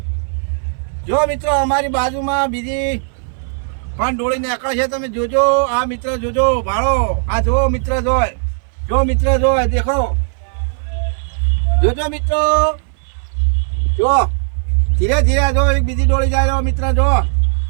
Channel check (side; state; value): left; silent; 61 dB below the other